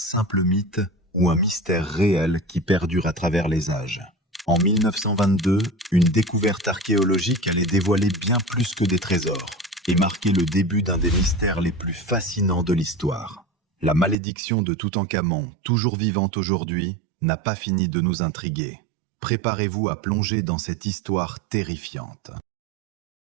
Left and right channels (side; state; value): left; drops out; at 14.2 s